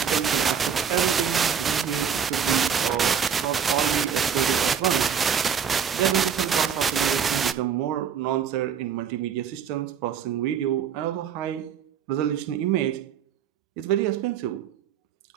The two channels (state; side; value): quieter; left; 7.7 dB